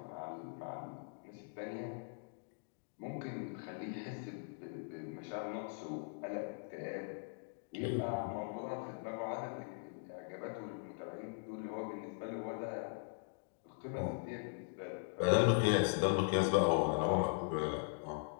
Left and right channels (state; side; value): silent; right; digital silence